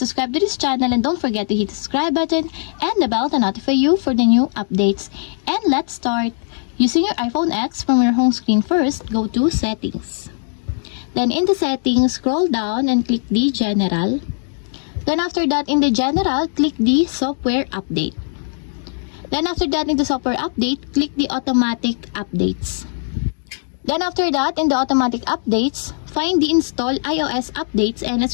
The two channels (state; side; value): silent; right; digital silence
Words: to this channel and don't forget to hit the subscribe button and the bell to notify you for the new updates. And let's start. Using your iPhone X, from your home screen first, go to Settings. Then in the Settings, scroll down and click the General. Then after that, in the General, click the Software Update. Then after that, in the Software Update, click the Automatic Updates. Then after that, in the Automatic Updates, find the Install iOS Updates, and